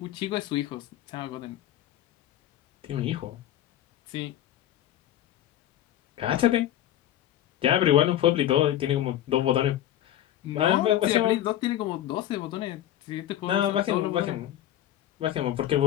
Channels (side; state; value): right; quieter; 12.4 dB